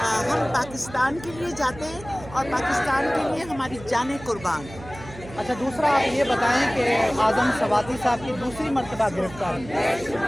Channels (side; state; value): right; noise; hum, 16 dB below the sound